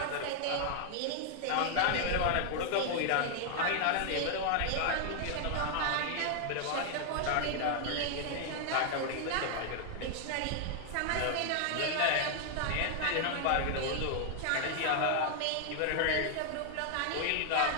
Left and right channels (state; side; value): different; both; correlation 0.00